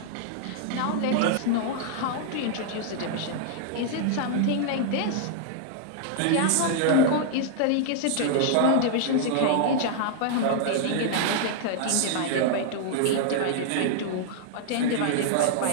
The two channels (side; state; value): both; different; correlation -0.01